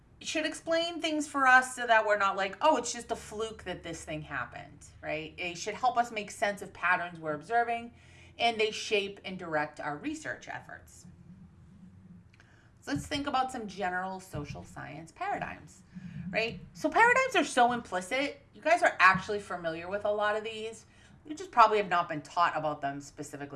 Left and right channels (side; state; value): both; identical; correlation 1.00